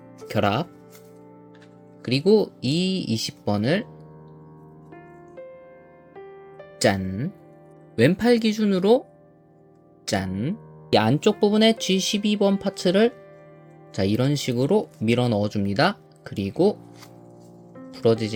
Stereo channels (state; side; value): identical; both; correlation 1.00